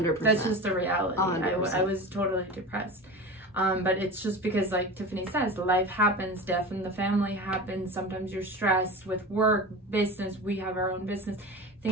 That's just the reality. 100%. I was totally depressed. But it's just because, like Tiffany says, life happens, death in the family happens. Sometimes you're stressed with work, business. We have our own business,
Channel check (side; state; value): both; normal; correlation 0.30